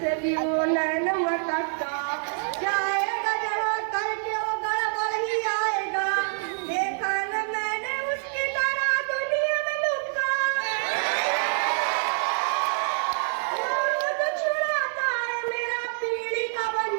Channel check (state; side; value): silent; left; digital silence